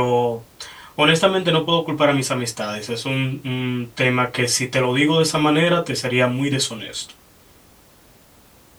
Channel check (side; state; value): both; identical; correlation 1.00